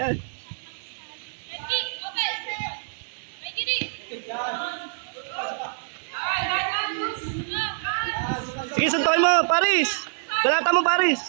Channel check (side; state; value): left; silent; digital silence